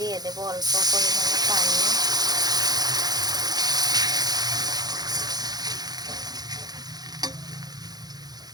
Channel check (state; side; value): late; left; 0.19 ms